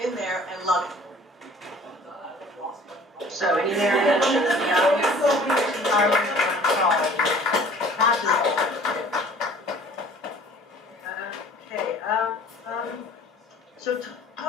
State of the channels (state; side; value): normal; both; correlation 0.50